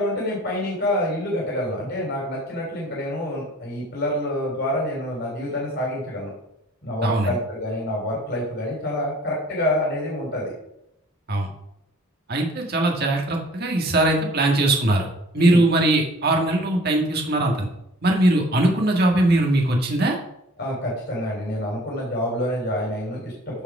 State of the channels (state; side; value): normal; both; correlation 0.51